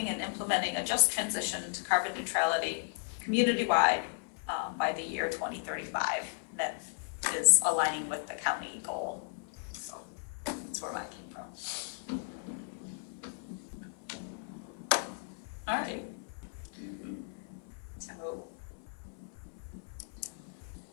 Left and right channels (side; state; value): right; silent; 54 dB below the other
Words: and implementing a just transition to carbon neutrality community-wide by the year 2035. That is aligning with the county goal. So that's where mine came from. All right. So